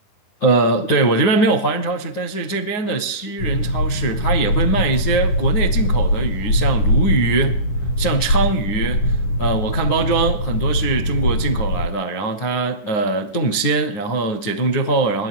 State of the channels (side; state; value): right; late; 9.5 ms